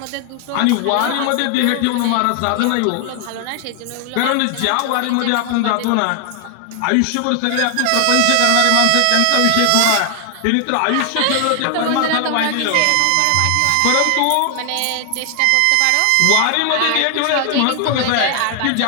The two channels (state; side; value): different; both; correlation 0.00